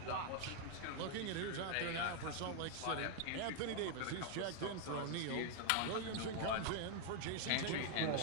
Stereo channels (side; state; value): both; different; correlation 0.00